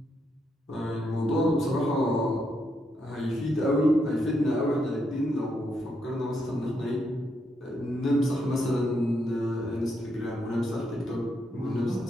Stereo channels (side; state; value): both; normal; correlation 0.79